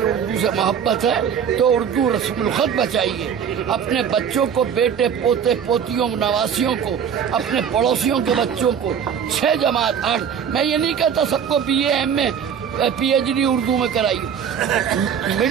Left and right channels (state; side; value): quieter; left; 7.8 dB